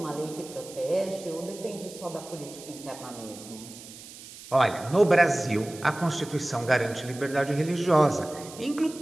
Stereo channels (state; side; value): noise; right; hiss, 16 dB below the sound